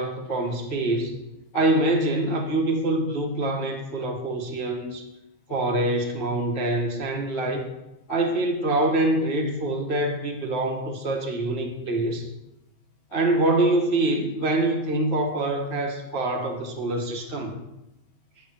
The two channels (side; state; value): right; late; 15 ms